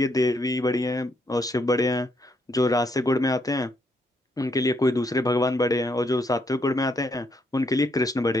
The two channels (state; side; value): normal; both; correlation 0.74